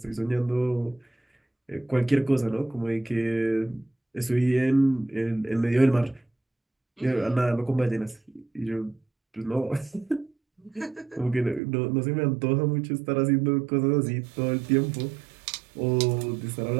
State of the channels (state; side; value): drops out; left; at 11.6 s